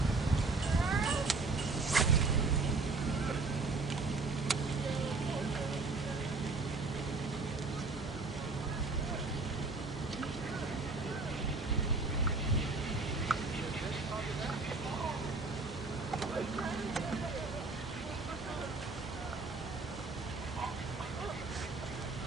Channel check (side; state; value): left; quieter; 3.8 dB